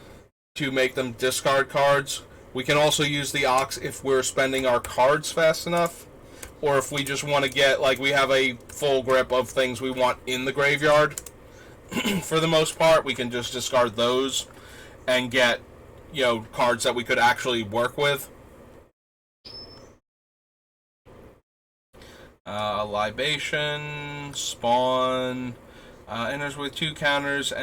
to make them discard cards. We can also use the Ox if we're spending our cards fast enough. Or if we just want to get, like, we have a full grip of things we want in the graveyard. For the most part, we can just discard those and get, cards that we could actually work with. Libation, Spawn, enters with 2 counters,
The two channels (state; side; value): identical; both; correlation 1.00